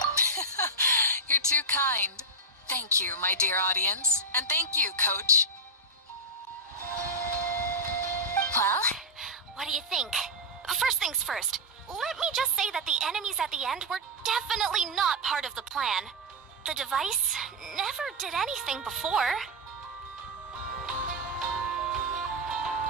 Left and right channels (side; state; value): both; normal; correlation -0.01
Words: You're too kind. Thank you, my dear audience. And thank you, Coach. Well, what do you think? First things first, let me just say that the enemies at the end were definitely not part of the plan. The device never did anything before.